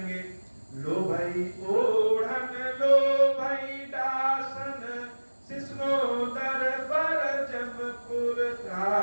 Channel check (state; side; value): inverted; both; correlation -1.00